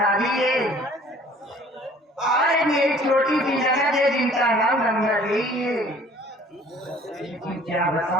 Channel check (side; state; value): both; normal; correlation 0.53